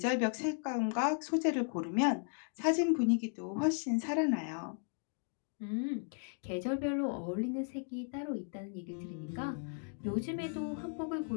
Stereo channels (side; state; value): right; silent; 54 dB below the other